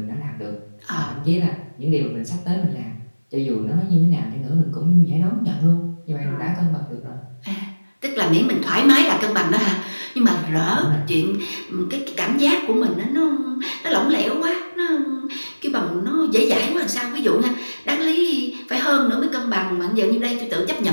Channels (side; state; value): both; inverted; correlation -1.00